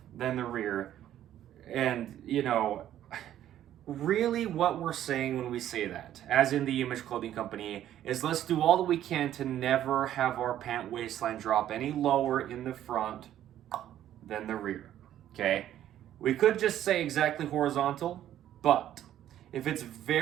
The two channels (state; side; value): quieter; left; 11.7 dB